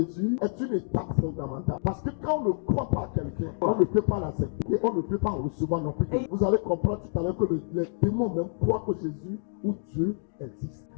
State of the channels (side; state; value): right; silent; digital silence